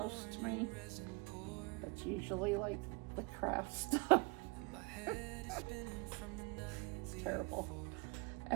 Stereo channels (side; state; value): left; quieter; 29.0 dB